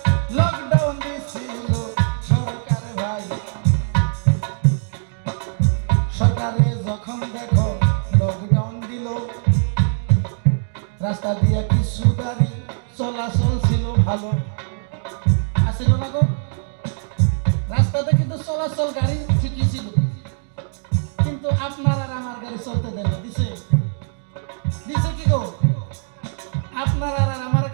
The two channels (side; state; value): left; silent; digital silence